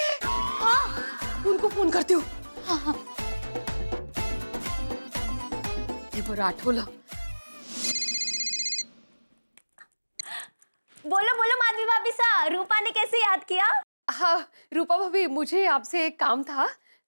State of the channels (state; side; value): inverted; both; correlation -1.00